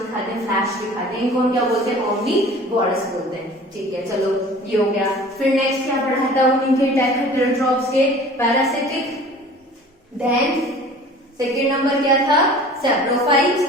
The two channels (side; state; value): both; normal; correlation 0.45